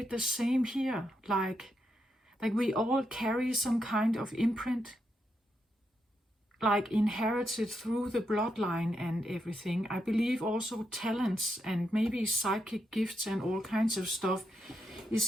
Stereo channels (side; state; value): both; normal; correlation 0.82